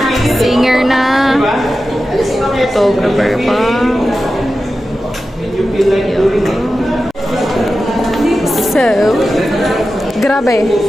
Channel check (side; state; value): both; normal; correlation 0.93